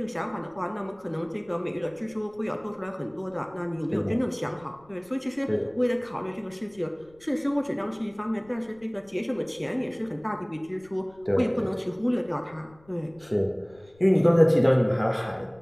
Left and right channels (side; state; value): left; noise; rumble, 28 dB below the sound